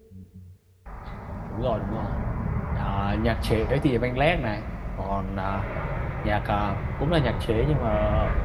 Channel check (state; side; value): identical; both; correlation 1.00